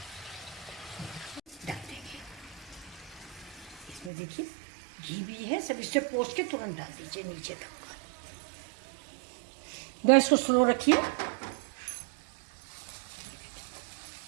डाल देंगे इसमें, देखिए घी भी है, सब इससे पोंछ के तुरंत डाल दीजिए नीचे तक। गैस को स्लो रखिए।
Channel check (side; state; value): left; drops out; at 4.1 s